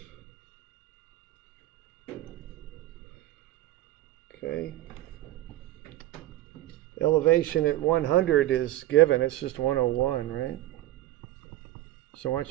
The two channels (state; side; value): quieter; left; 15.4 dB